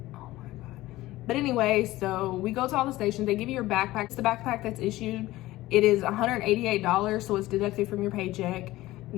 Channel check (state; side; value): quieter; right; 17.3 dB